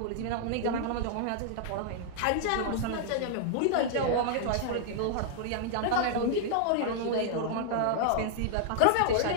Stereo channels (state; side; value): different; both; correlation -0.01